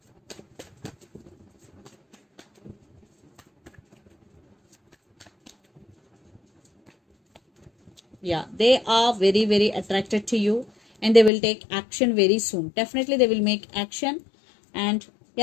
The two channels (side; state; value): right; drops out; at 11.3 s